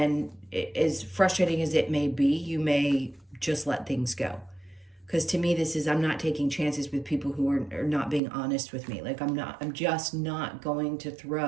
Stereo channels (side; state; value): left; drops out; at 8.2 s